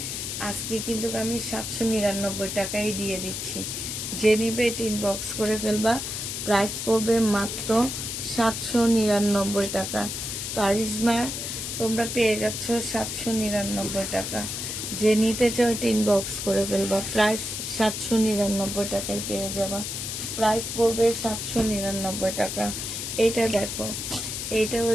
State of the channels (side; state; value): left; noise; hiss, 4 dB below the sound